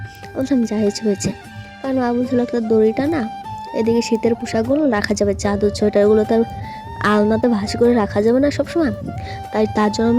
বলছিলাম যা হয়েছে, কারণ মা বলছিল একটা দড়িটা না, এদিকে শীতের পোশাকগুলো রাখা যাবে, চাদর সোয়েটারগুলো তার আলনাতে ভাঁজ করে রাখা যাবে না সবসময়, তাই তার জন্য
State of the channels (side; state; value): both; identical; correlation 1.00